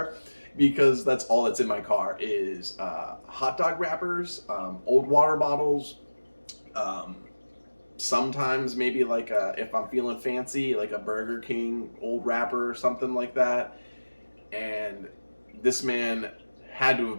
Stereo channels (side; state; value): both; inverted; correlation -1.00